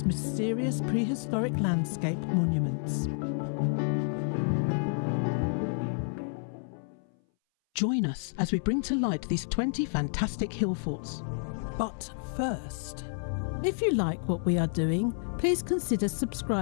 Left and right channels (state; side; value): silent; right; 58 dB below the other